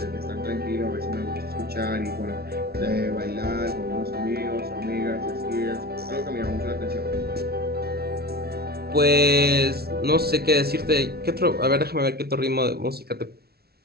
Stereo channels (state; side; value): late; left; 0.45 ms